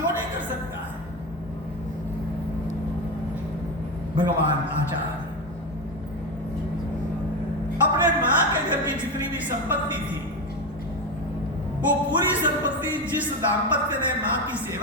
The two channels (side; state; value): both; normal; correlation 0.16